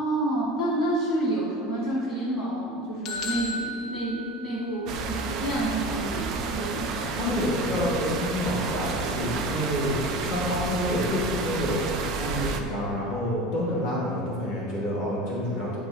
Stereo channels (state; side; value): normal; both; correlation 0.34